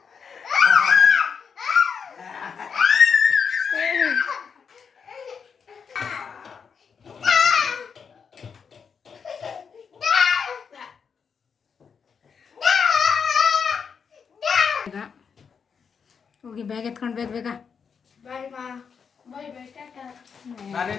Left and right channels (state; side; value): quieter; right; 6.3 dB